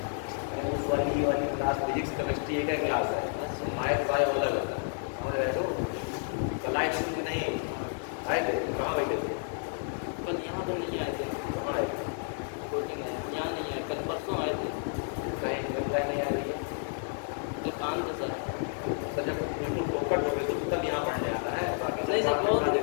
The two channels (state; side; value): silent; right; 56 dB below the other